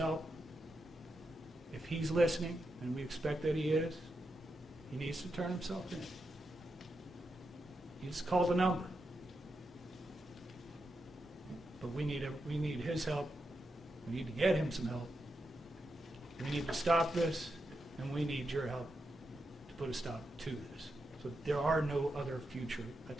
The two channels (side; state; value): both; normal; correlation 0.86